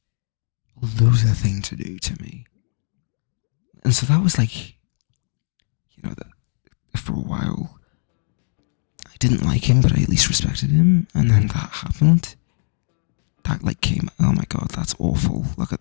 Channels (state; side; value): silent; right; digital silence